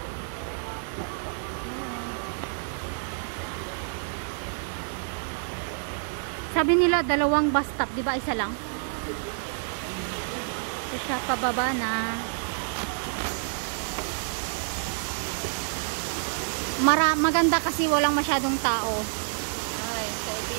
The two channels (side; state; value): left; silent; 59 dB below the other